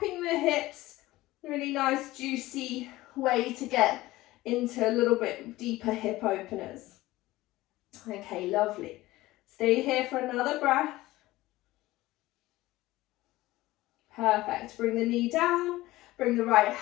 the hips. Really nice, juicy way to get into a little bit deeper hip openers. Okay, lovely. Stay here for another breath. Perfect. Bring the knee down, bring the right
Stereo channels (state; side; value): quieter; right; 17.8 dB